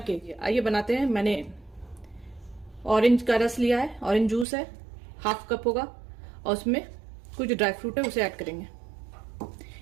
आइए बनाते हैं। मैंने ऑरेंज का रस लिया है, ऑरेंज जूस है, हाफ कप होगा, और उसमें कुछ ड्राई फ्रूट है, उसे ऐड करेंगे।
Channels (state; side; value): drops out; left; at 4.5 s